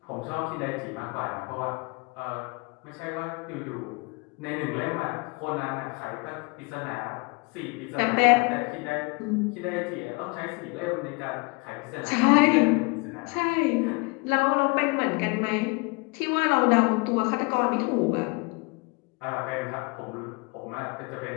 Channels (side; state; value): right; quieter; 29.3 dB